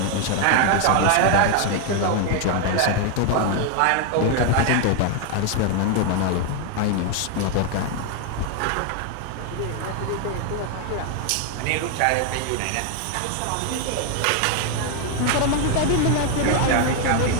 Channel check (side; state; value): both; different; correlation 0.00